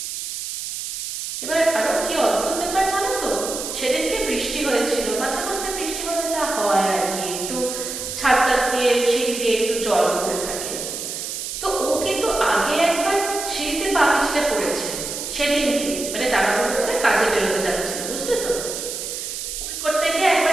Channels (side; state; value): right; noise; hiss, 6 dB below the sound